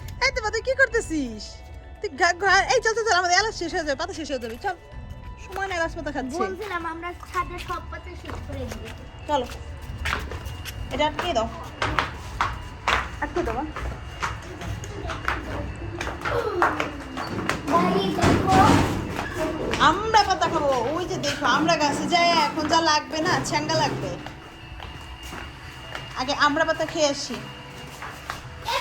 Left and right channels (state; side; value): identical; both; correlation 1.00